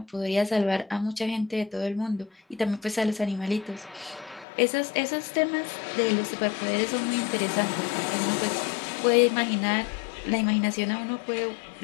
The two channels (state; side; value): drops out; right; at 4.5 s